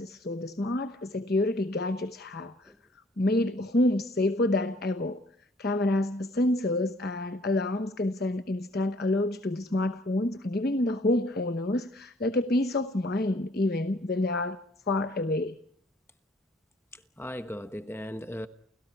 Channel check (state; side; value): normal; both; correlation 0.60